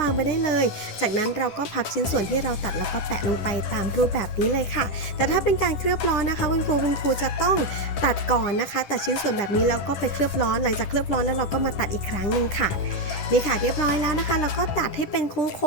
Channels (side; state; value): right; late; 10 ms